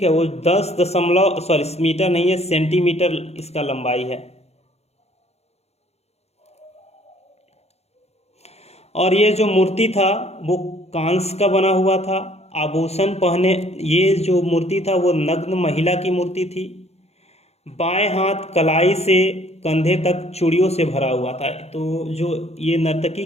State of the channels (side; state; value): right; late; 0.31 ms